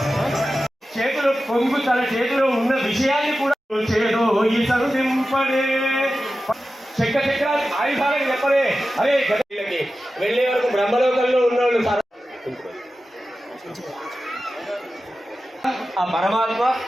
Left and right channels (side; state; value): both; normal; correlation 0.93